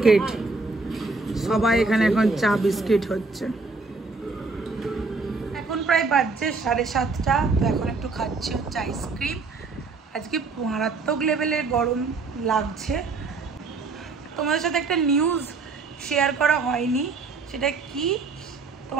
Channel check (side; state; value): left; quieter; 4.0 dB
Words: সবাই এখানে এখন চা বিস্কিট হচ্ছে। এখন প্রায় বাজছে 7:30, তো এখন একটু খাচ্ছি হচ্ছে আইসক্রিম। আজকে মারাত্মক লেভেলের গরম লাগছে। তোমাদের সাথে একটা নিউজ শেয়ার করা হয়নি, সেটা কি